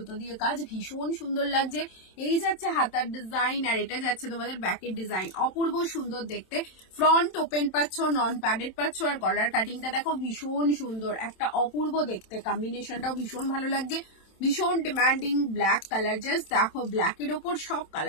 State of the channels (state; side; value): late; right; 27 ms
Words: দিয়ে কাজ, ভীষণ সুন্দর লাগছে। এই যাচ্ছে হাতার ডিজাইন, আর এটা যাচ্ছে তোমাদের ব্যাকের ডিজাইন, অপূর্ব সুন্দর দেখতে। ফ্রন্ট ওপেন পাচ্ছ, নন প্যাডেড পাচ্ছ, আর গলার কাটিংটা দেখো ভীষণ সুন্দর, একটা অপূর্ব দেখতে। কম্বিনেশনটাও ভীষণ ভালো লাগছে, ভীষণ ডিমান্ডিং ব্ল্যাক কালার। জাস্ট দেখো ব্ল্যাকের ওপর সব